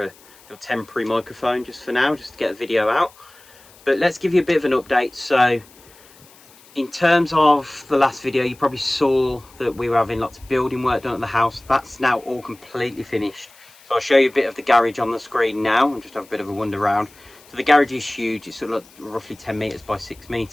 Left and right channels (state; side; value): noise; left; hiss, 26 dB below the sound